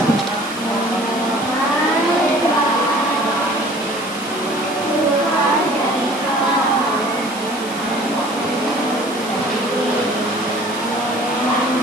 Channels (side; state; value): right; noise; hiss, 16 dB below the sound